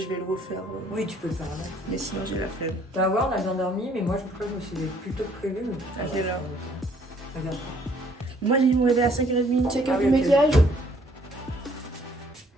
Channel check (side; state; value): both; normal; correlation 0.62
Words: vais le refaire. Oui, tu peux le faire là. Mais sinon j'ai la flemme. Tu vas voir, on a bien dormi, mais moi je crois que je me suis plutôt prévu. À quelle heure? Regarde. Moi j'ai dû me réveiller à 5h30. Check Ah up oui, du ok. maquillage.